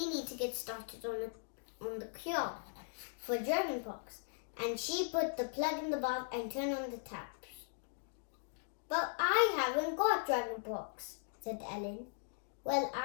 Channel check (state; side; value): silent; right; digital silence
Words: need to get started on the cure for dragon pox." And she put the plug in the bath and turned on the taps. "But I haven't got dragon pox," said Ellen. "Well,